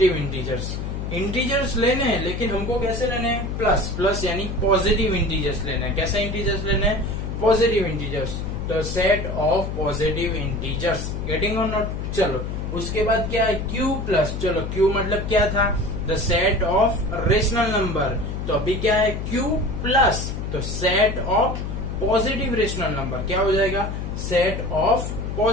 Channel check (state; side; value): noise; left; hum, 4 dB below the sound